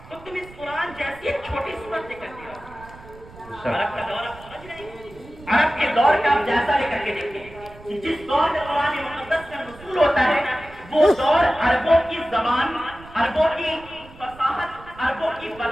تو تم اس قرآن جیسی ایک چھوٹی صورت لے کر کے آؤ۔ عرب کا دور آپ سمجھ رہے ہیں؟ عرب کے دور کا آپ جیسا لے کر کے دیکھیں کہ جس دور میں قرآن مقدس کا نزول ہوتا ہے وہ دور عربوں کی زبان، عربوں کی فصاحت، عربوں کی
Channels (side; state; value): right; noise; rumble, 20 dB below the sound